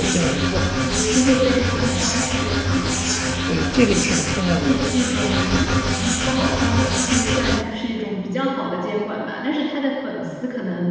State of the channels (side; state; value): both; identical; correlation 1.00